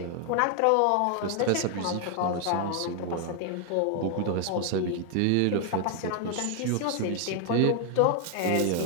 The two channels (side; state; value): both; different; correlation 0.00